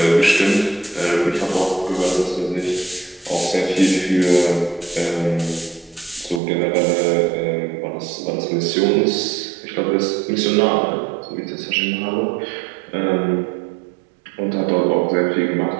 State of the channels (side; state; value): left; drops out; at 6.4 s